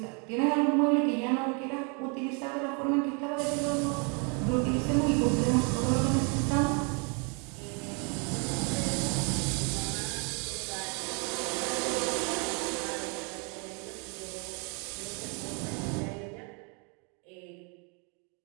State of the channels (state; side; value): quieter; left; 35.4 dB